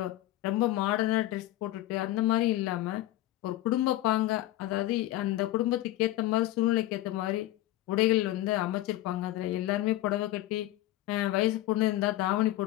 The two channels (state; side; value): quieter; right; 15.5 dB